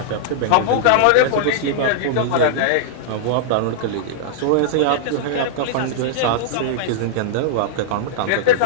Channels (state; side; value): different; both; correlation -0.01